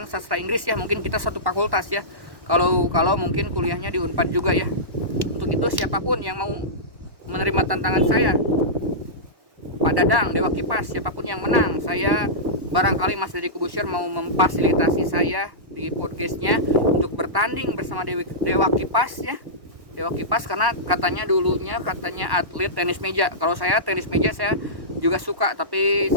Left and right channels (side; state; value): left; late; 1.1 ms